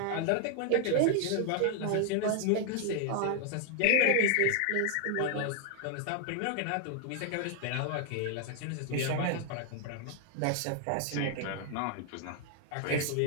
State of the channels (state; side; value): different; both; correlation 0.00